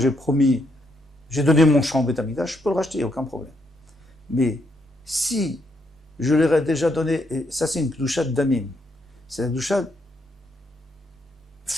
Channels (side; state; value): both; normal; correlation 0.76